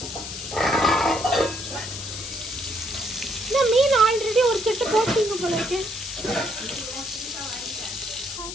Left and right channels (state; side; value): noise; left; hiss, 8 dB below the sound